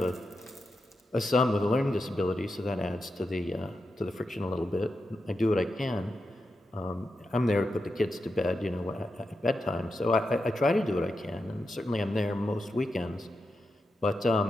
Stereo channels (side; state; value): both; normal; correlation 0.88